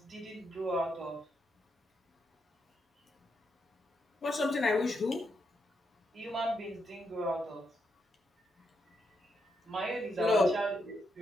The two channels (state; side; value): normal; both; correlation 0.81